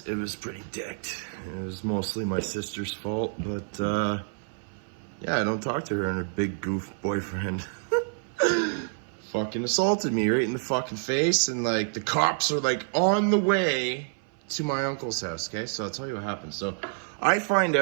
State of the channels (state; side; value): silent; left; 57 dB below the other